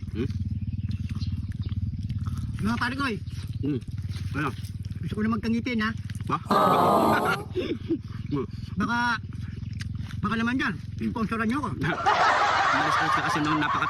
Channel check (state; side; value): identical; both; correlation 1.00